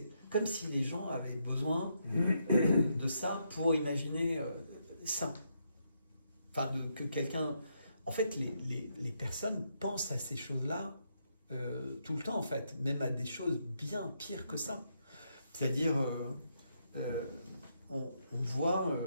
comme si les gens avaient besoin de ça pour imaginer ça. Enfin, que quelqu'un... En fait, les personnes pensent à ces choses-là tout le temps, en fait. Même à des choses bien pires que ça. C'est-à-dire... on voit,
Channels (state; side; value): inverted; both; correlation -0.78